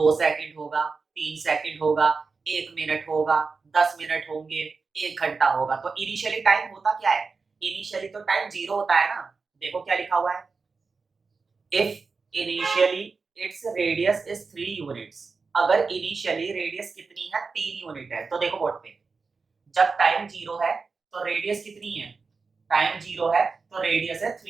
सेकंड होगा, 3 सेकंड होगा, 1 मिनट होगा, 10 मिनट होंगे, 1 घंटा होगा। तो इनिशियली टाइम होता क्या है, इनिशियली तो टाइम 0 होता है ना। देखो क्या लिखा हुआ है, if initially its radius is 3 units. अगर इनिशियली रेडियस कितनी है, 3 यूनिट है, तो देखो बोर्ड पे, जब टाइम 0 है तो रेडियस कितनी है, टाइम 0 है तो रेडियस है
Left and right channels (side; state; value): left; quieter; 4.6 dB